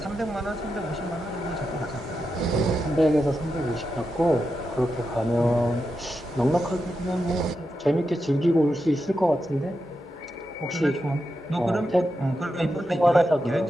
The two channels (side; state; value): both; normal; correlation 0.88